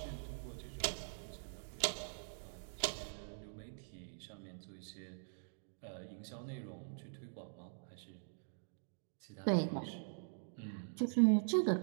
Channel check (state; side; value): silent; left; digital silence